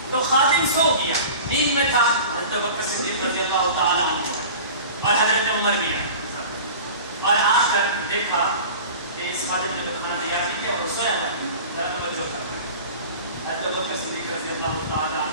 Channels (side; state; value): both; inverted; correlation -0.38